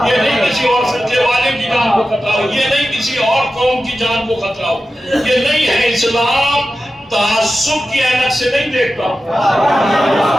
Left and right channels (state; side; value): normal; both; correlation 0.93